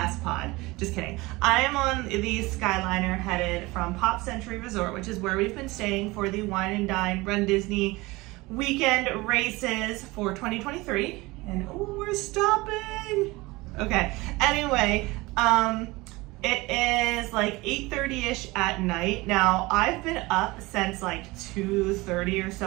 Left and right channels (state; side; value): quieter; left; 22.0 dB